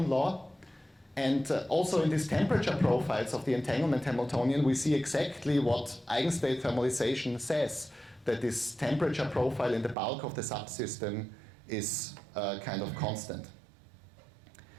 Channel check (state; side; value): drops out; left; at 10.0 s